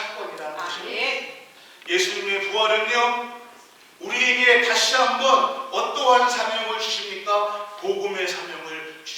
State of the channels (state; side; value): identical; both; correlation 1.00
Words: 것입니다. 예수님의 부활은요, 우리에게 다시 한번 어떠한 사명을 주십니까? 복음의 사명을